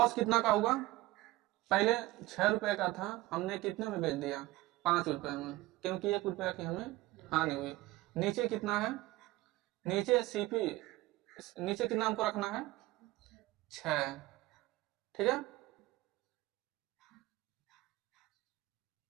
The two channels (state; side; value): quieter; left; 18.3 dB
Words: कितना का होगा, पहले 6 रुपए का था, हमने कितने में बेच दिया, 5 रुपए में, क्योंकि 1 रुपया की हमें हानि हुई। नीचे कितना है, नीचे सीपी, नीचे कितना हमको रखना है, 6। ठीक है,